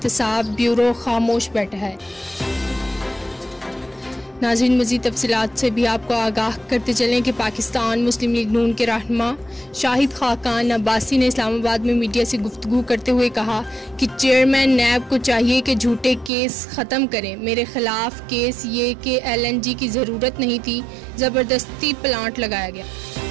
ब्यूरो खामोश बैठा है। नाज़रीन, मज़ीद तफसीलात से भी आपको आगाह करते चलें कि पाकिस्तान मुस्लिम लीग नून के रहनुमा शाहिद खाकान अब्बासी ने इस्लामाबाद में मीडिया से गुफ्तगू करते हुए कहा कि चेयरमैन नैब को चाहिए कि झूठे केस ख़त्म करें। मेरे ख़िलाफ़ केस ये कि LNG की ज़रूरत नहीं थी, ज़बरदस्ती प्लांट लगाया गया।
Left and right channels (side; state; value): left; drops out; at 16.3 s